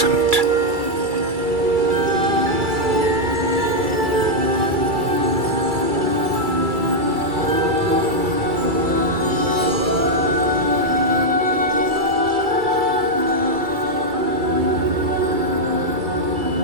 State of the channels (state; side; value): late; left; 2.3 ms